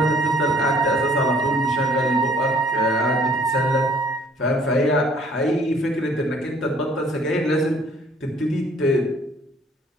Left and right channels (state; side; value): normal; both; correlation 0.58